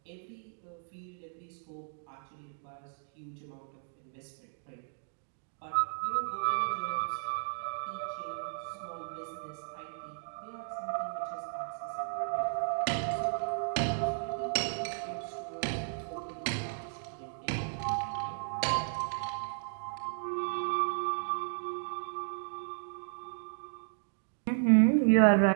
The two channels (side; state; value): left; silent; digital silence